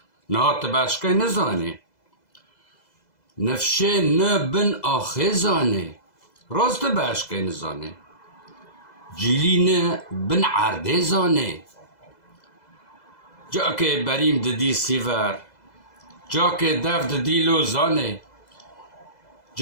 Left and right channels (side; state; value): right; late; 2.0 ms